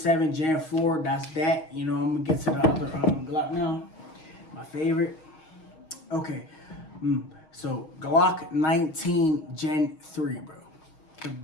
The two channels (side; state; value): right; late; 6.4 ms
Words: Gen 4, that's that. You know, I'm gonna get to the other Glock now. My favorite. Okay, so Glock 19 Gen 3, bro.